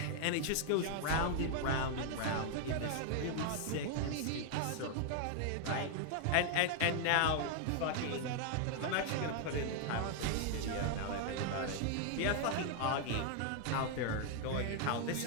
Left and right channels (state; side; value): different; both; correlation 0.00